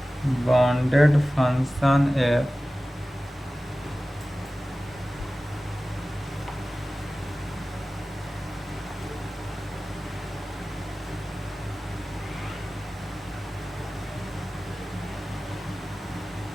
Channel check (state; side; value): normal; both; correlation 0.96